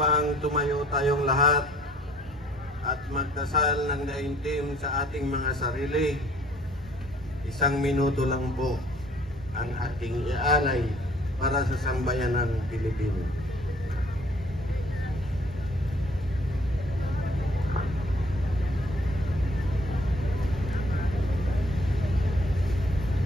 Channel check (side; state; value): both; normal; correlation 0.58